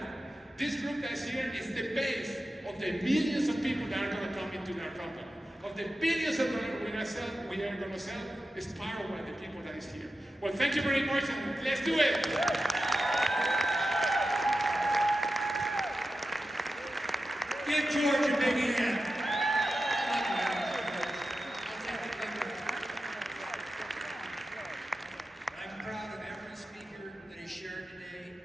this group that's here is the base of the millions of people that are going to come into our company. of the billions of dollars we are going to sell is powered by the people that is here. Well, thank you very much, and let's do it. Give George a big hand. I'm proud of every speaker that he shared today,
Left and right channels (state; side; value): normal; both; correlation 0.92